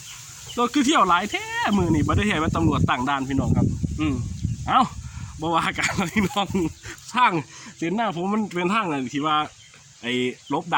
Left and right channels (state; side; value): identical; both; correlation 1.00